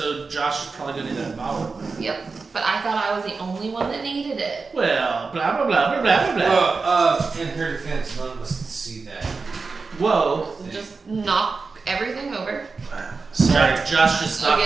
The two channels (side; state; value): left; quieter; 4.4 dB